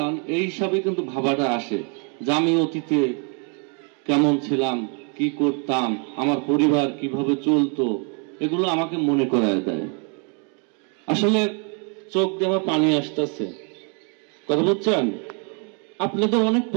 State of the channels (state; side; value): quieter; left; 38.1 dB